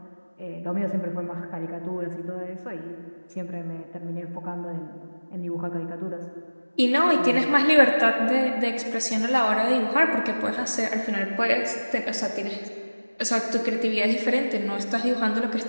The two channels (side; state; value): both; inverted; correlation -1.00